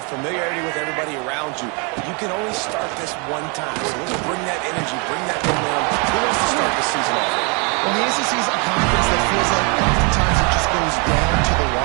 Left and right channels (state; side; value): quieter; left; 33.5 dB